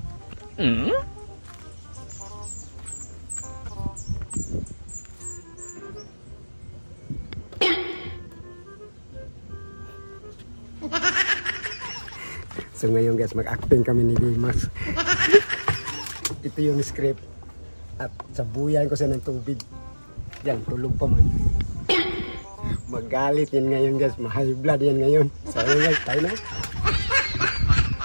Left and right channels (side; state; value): both; inverted; correlation -1.00